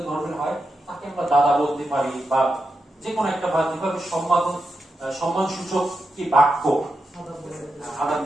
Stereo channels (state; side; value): normal; both; correlation 0.87